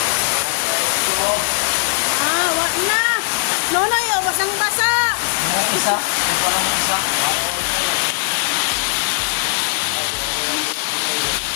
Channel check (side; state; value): right; silent; digital silence